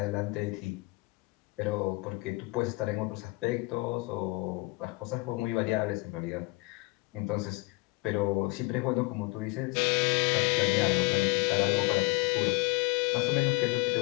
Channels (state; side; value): quieter; right; 25.3 dB